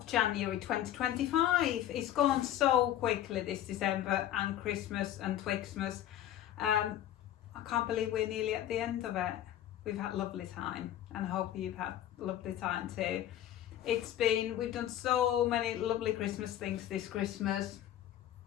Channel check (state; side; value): quieter; right; 12.1 dB